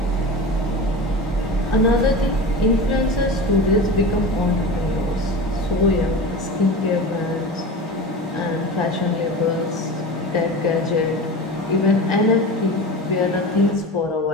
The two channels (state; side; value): normal; both; correlation 0.30